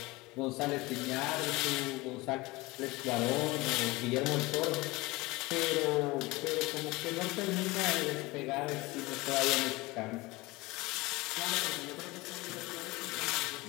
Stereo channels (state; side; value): quieter; right; 22.0 dB